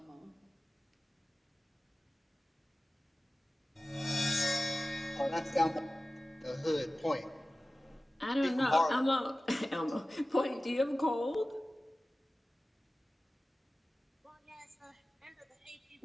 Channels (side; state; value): both; normal; correlation 0.96